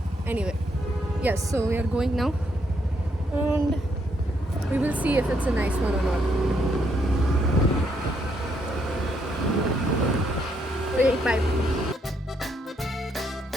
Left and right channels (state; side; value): normal; both; correlation 0.74